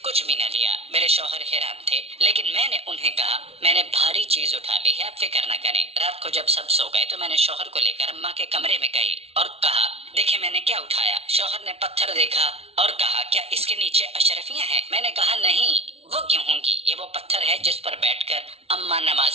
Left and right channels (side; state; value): left; late; 0.30 ms